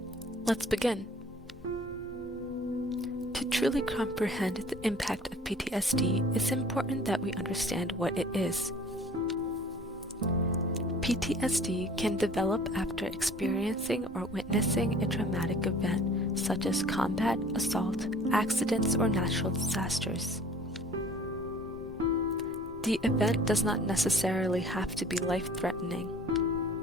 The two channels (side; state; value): both; normal; correlation 0.50